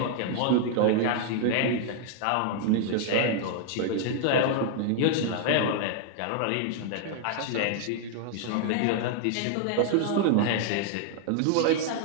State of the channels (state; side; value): different; both; correlation 0.00